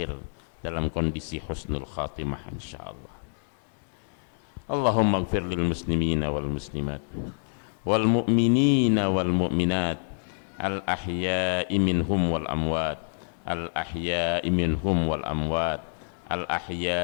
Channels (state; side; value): silent; right; digital silence